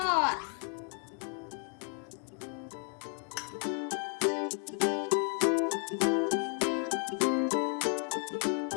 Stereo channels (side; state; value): right; quieter; 39.7 dB